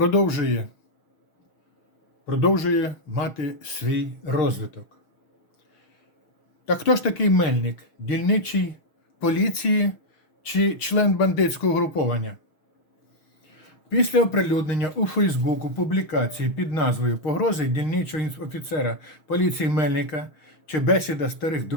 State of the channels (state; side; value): late; right; 6.4 ms